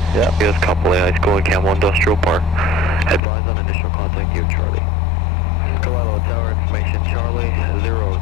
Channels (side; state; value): right; drops out; at 3.2 s